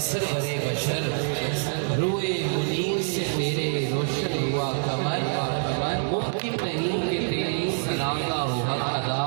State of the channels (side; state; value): left; silent; digital silence